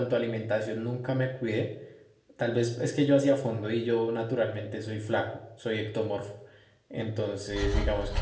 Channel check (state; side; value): identical; both; correlation 1.00